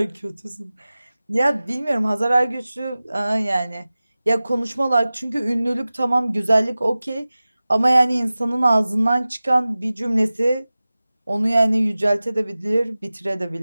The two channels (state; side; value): inverted; both; correlation -0.97